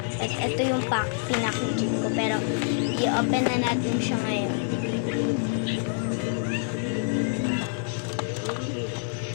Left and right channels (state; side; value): silent; right; 60 dB below the other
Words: At ito yung pinakijing ko. Pero, i-open na natin siya ngayon.